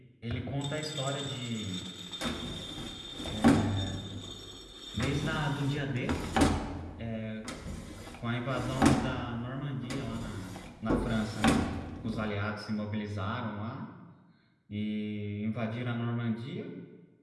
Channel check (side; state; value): both; identical; correlation 1.00